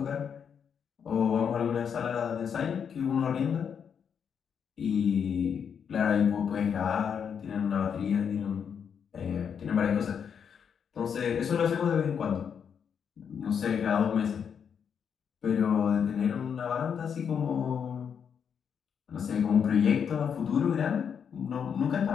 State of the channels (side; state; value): right; quieter; 7.3 dB